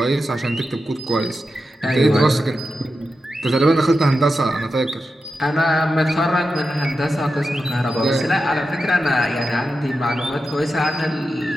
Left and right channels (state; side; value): normal; both; correlation 0.90